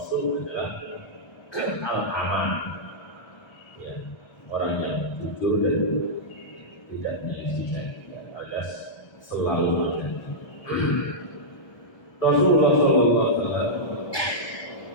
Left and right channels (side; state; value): right; late; 1.3 ms